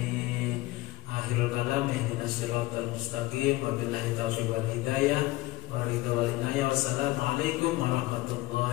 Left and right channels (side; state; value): right; quieter; 19.6 dB